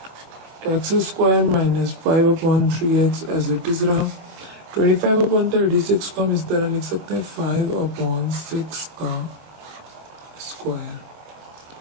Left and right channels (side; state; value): left; late; 25 ms